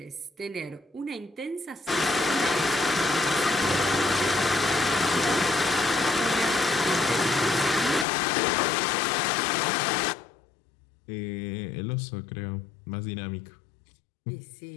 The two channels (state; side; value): drops out; right; at 8.1 s